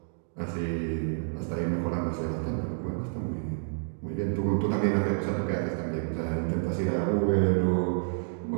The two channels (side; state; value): left; silent; digital silence